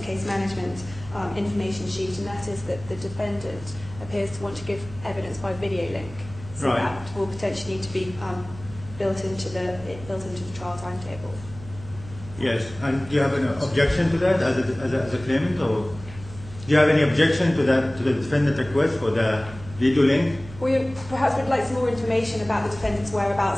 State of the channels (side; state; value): right; noise; hum, 16 dB below the sound